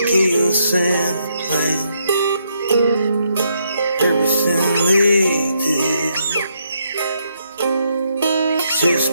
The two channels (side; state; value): both; inverted; correlation -0.76